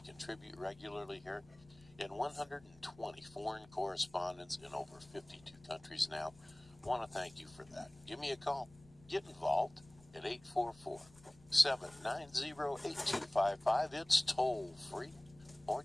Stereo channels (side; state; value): left; noise; rumble, 25 dB below the sound